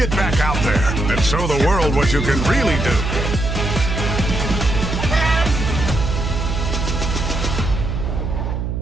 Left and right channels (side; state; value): right; noise; hum, 2 dB below the sound